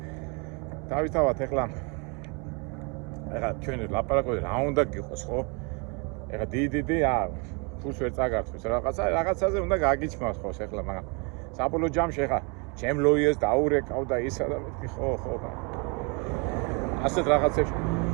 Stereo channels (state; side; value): quieter; left; 32.5 dB